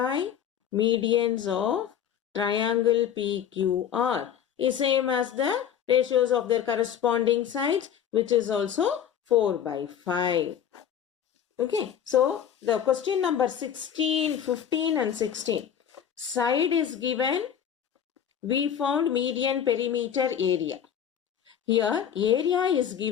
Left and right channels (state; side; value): quieter; right; 9.0 dB